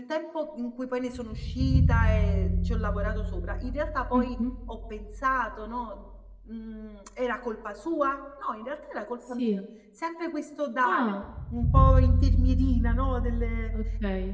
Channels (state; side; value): identical; both; correlation 1.00